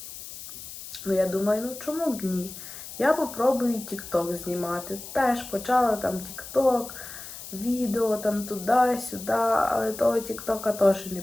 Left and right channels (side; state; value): left; noise; hiss, 12 dB below the sound